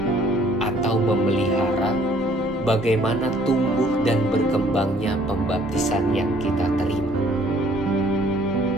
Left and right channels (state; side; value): normal; both; correlation 0.59